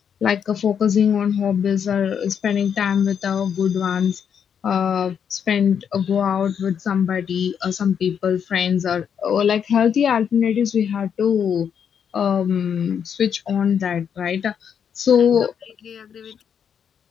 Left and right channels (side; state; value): right; quieter; 7.8 dB